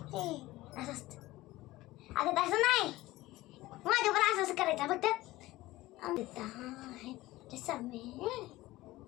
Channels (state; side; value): quieter; right; 17.9 dB